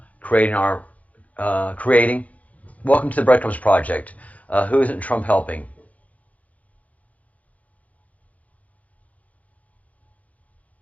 Creating. Welcome to the Breadcrumbs Project. Who isn't Trump helping?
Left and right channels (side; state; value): right; late; 0.070 ms